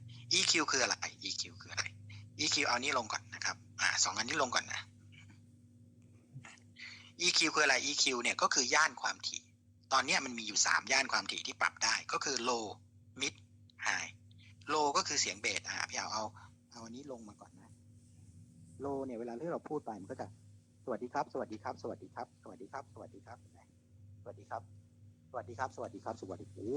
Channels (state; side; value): identical; both; correlation 1.00